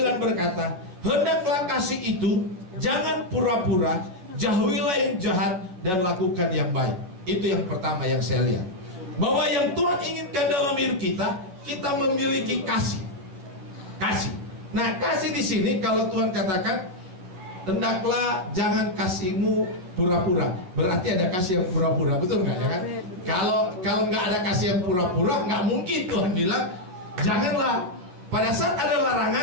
berkata, hendaklah kasih itu jangan pura-pura, jauhilah yang jahat dan lakukan yang baik. Itu yang pertama yang saya lihat. Bahwa yang Tuhan inginkan dalam hidup kita, kita memiliki kasih. Kasih. Nah, kasih di sini kalau Tuhan katakan, hendaklah jangan kasihmu pura-pura. Berarti ada kasih yang pura-pura, betul nggak ya kan? Kalau nggak ada kasih yang pura-pura, nggak mungkin Tuhan bilang janganlah. Pada saat ada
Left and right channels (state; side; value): late; left; 11 ms